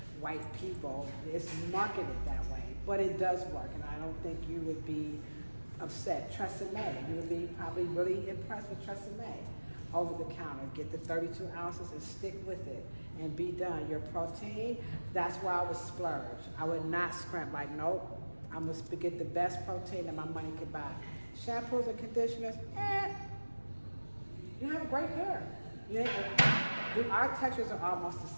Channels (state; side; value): inverted; both; correlation -1.00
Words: white people. It's marketed that way, but it does work, and I don't think you would be upset. Tresemme, you would be probably really impressed with Tresemme. Over the counter, get the 32 ounces and stick with it and be done. Your protein, that's why I would splurge. I would not scrimp, like, nope, I'm gonna get the best protein that my money could buy. Shampoos and conditioners, you have great hair. Our textures are almost the